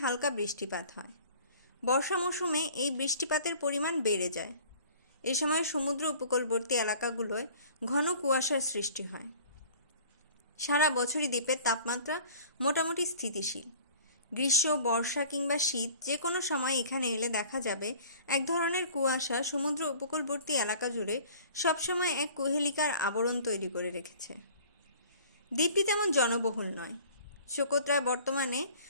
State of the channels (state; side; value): inverted; both; correlation -0.49